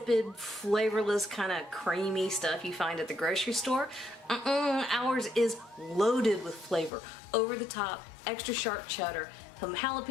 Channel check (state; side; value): drops out; right; at 6.9 s